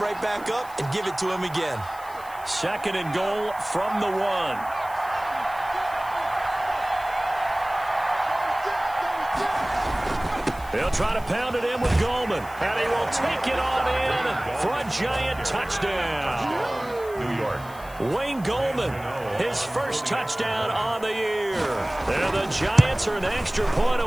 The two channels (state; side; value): noise; left; hiss, 21 dB below the sound